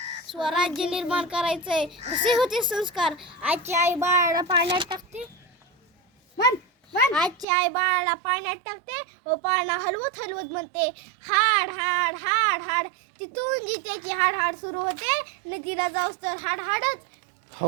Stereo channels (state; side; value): drops out; left; at 7.5 s